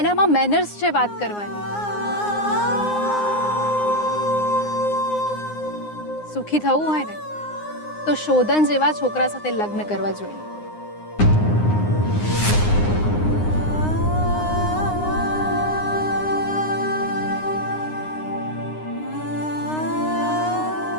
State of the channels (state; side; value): late; right; 9.7 ms